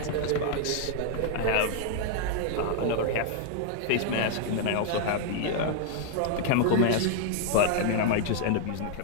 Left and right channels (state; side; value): different; both; correlation 0.00